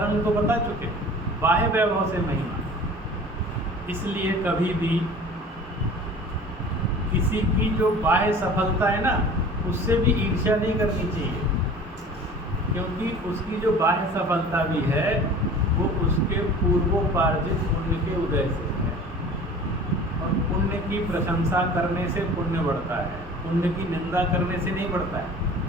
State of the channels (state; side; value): normal; both; correlation 0.43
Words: को बता चुके, बाह्य वैभव से महिमा। इसलिए कभी भी किसी की जो बाह्य सफलता है ना, उससे भी ईर्ष्या नहीं करनी चाहिए, क्योंकि उसकी जो बाह्य सफलता भी है वो उसके पूर्वोपार्जित पुण्य के उदय से है। और पुण्य की प्रशंसा करने से पुण्य बढ़ता है, पुण्य की निंदा करने से नहीं बढ़ता है।